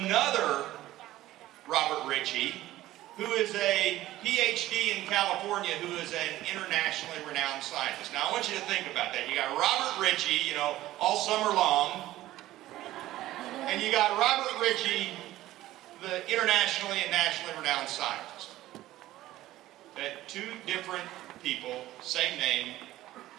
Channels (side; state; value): left; quieter; 15.3 dB